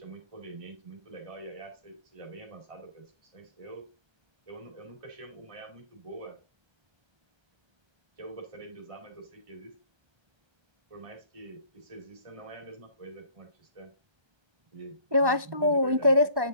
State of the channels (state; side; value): late; left; 1.1 ms